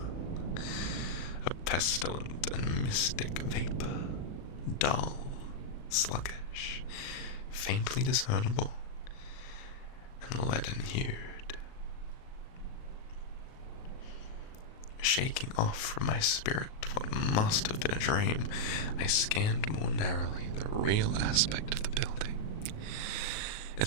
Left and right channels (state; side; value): late; right; 38 ms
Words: a pestilent and mystic vapour, dull, sluggish, faintly discernible, and leaden-hued. Shaking off from my spirit what must have been a dream, I scanned more narrowly the real aspect of the building. Its